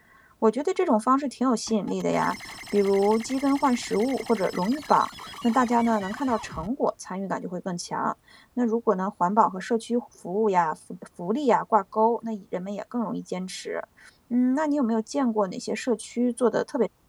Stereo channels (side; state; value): both; identical; correlation 1.00